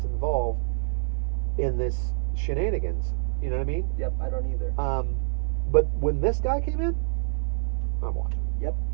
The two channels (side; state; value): left; silent; 61 dB below the other